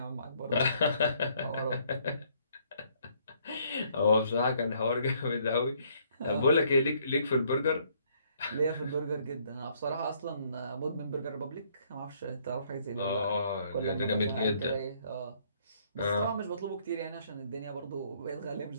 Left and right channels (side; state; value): both; inverted; correlation -0.66